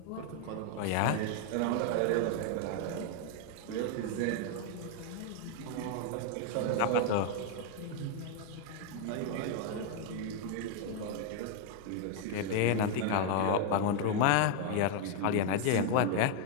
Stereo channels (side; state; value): both; different; correlation 0.00